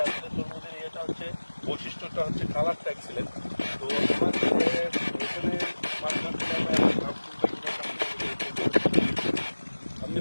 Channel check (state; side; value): inverted; both; correlation -1.00